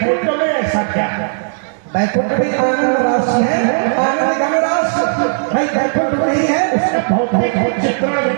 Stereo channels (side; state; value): left; silent; 69 dB below the other